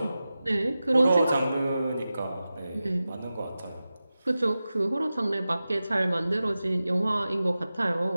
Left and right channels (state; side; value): inverted; both; correlation -0.94